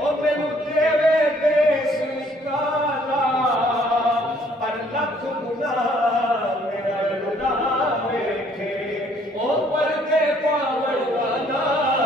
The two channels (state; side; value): normal; both; correlation 0.62